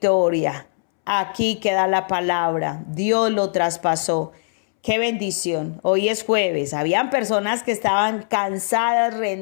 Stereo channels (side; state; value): right; silent; 65 dB below the other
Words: Aquí queda la palabra. Dios lo traspasó. Qué bendición. Hoy es jueves. Habían personas que estaban cansadas,